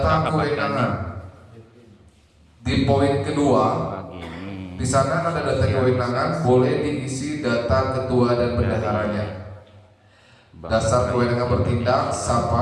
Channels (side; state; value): both; identical; correlation 1.00